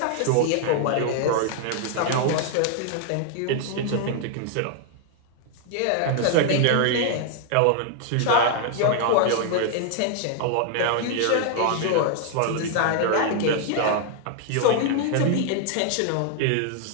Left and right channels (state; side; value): different; both; correlation 0.00